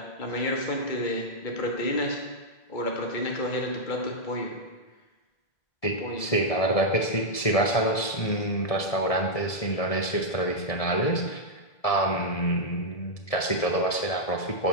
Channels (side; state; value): right; late; 1.7 ms